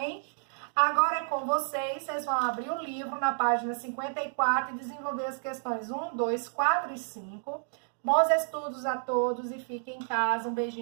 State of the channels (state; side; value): silent; left; digital silence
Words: Agora é com vocês vão abrir o livro na página 54 e desenvolver as questões 1, 2, 4 e 5. Bons estudos a todos e fiquem em casa. Um